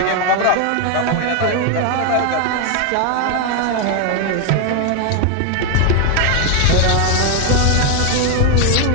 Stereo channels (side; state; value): both; different; correlation 0.01